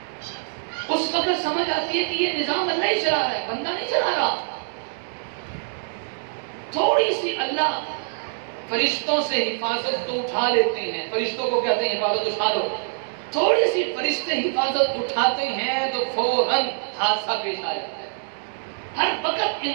اس وقت سمجھ آتی ہے کہ یہ نظام اللہ ہی چلا رہا ہے، بندہ نہیں چلا رہا۔ تھوڑی سی اللہ فرشتوں سے حفاظت تو اٹھا لیتے ہیں، فرشتوں کو کہتے ہیں حفاظت اٹھا لو، تھوڑی سی فرشتے حفاظت اٹھاتے ہیں تو فوراً حادثہ پیش آ جاتا ہے۔ ہر وقت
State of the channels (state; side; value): silent; left; 62 dB below the other